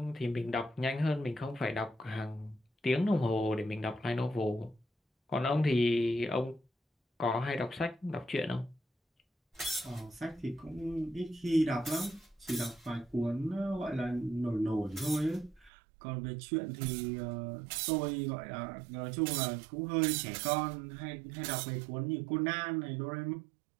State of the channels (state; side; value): drops out; left; at 15.7 s